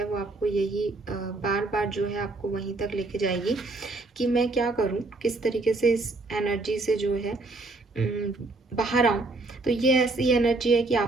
वो आपको यही बार बार जो है आपको वहीं तक लेके जाएगी कि मैं क्या करूँ, किस तरीके से इस एनर्जी से जो है बाहर आऊँ। तो ये ऐसी एनर्जी है कि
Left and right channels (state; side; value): quieter; left; 3.2 dB